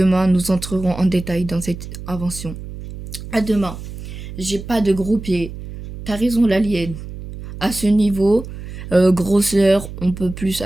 nous entrerons en détail dans cette invention. À demain. J'ai pas de gros pieds. T'as raison, l'alien. À ce niveau, grosseur, on peut plus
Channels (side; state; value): right; noise; hum, 11 dB below the sound